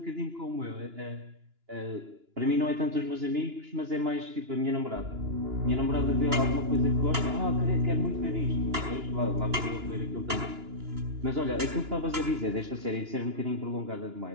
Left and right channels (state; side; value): late; left; 2.9 ms